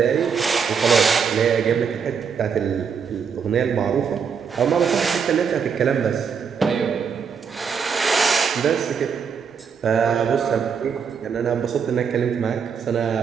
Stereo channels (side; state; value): left; quieter; 6.5 dB